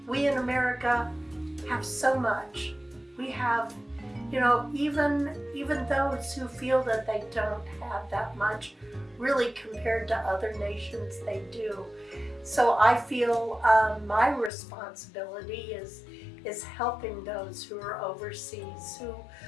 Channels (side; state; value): right; drops out; at 14.5 s